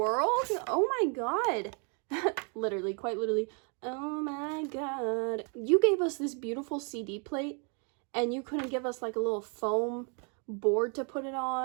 Oh my god. Literally, quite literally. Oh my god. You gave us this beautiful CD plate and you couldn't give us like a little foam board to put it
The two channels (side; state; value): left; quieter; 38.6 dB